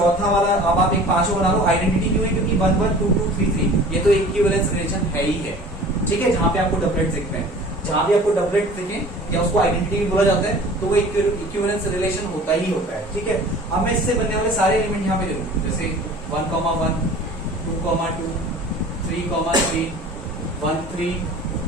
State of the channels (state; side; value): normal; both; correlation 0.44